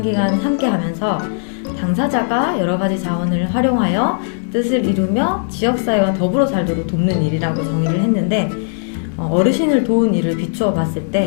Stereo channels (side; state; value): right; silent; 68 dB below the other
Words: 함께하면서 당사자가 여러 가지 자원을 활용하여 뜻을 이루며 지역사회와 더불어 살도록 돕는 일이라고 정의를 했는데 어르신을 도운 일을 비추어 봤을